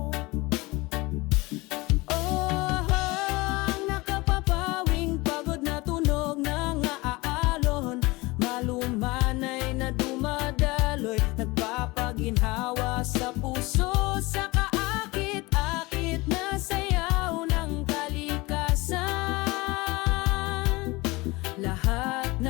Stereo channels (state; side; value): quieter; right; 22.7 dB